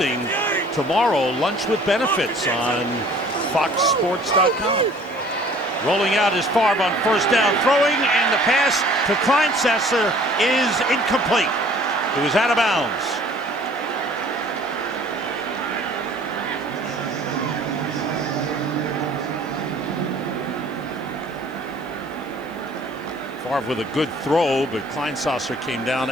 tomorrow Lunch with Benefits on FoxSports.com. Rolling out is Favre on 1st down, throwing, and the pass to Kleinsesser is incomplete. It was out of bounds. Favre with a good throw, but Kleinsesser came down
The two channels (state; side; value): noise; left; hiss, 28 dB below the sound